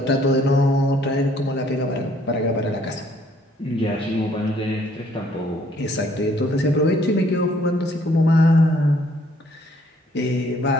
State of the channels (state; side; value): normal; both; correlation 0.63